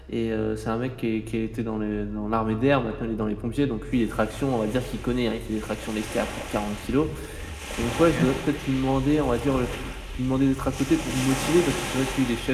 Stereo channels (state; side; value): identical; both; correlation 1.00